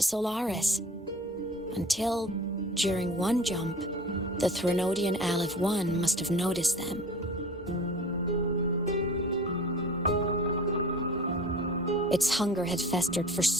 Solaris, until, during one jump, the Threnodian Aleph 1 must have noticed them. Its hunger had festered for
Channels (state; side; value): normal; both; correlation 0.41